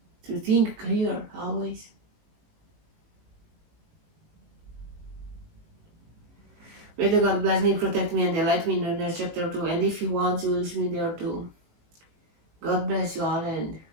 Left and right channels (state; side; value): late; left; 19 ms